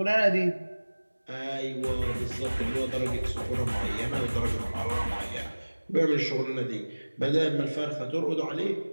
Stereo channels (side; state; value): both; inverted; correlation -1.00